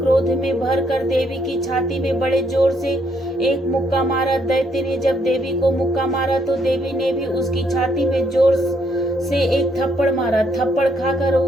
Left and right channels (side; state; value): both; normal; correlation 0.72